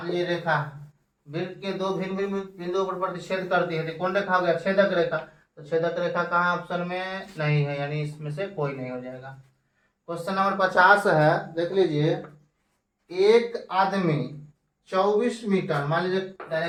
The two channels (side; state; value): both; identical; correlation 1.00